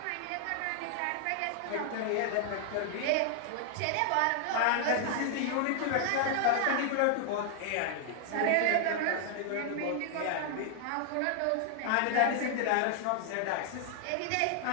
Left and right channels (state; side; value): different; both; correlation 0.00